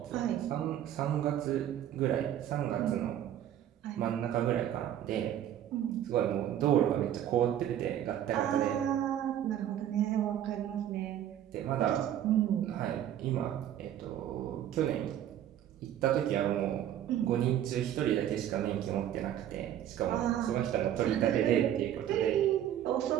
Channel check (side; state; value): left; quieter; 11.0 dB